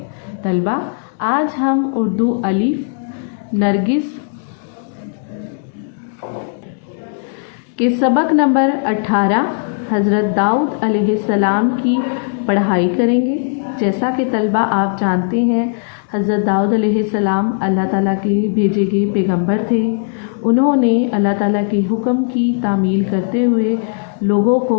तलबा, आज हम उर्दू अलिफ नरगिस के सबक नंबर 18 हज़रत दाऊद अलैहिस्सलाम की पढ़ाई करेंगे। जैसा कि तलबा आप जानते हैं, हज़रत दाऊद अलैहिस्सलाम अल्लाह ताला के भेजे गए पैगंबर थे। उन्होंने अल्लाह ताला के हुक्म की तामील करते हुए लोगों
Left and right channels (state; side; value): silent; right; digital silence